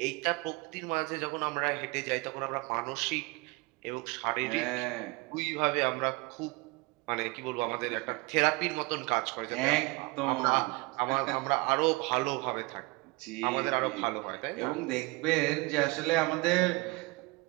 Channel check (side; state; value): left; quieter; 25.2 dB